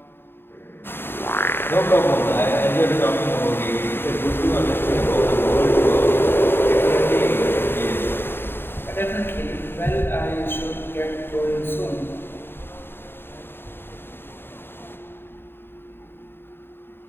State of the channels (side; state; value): right; late; 0.11 ms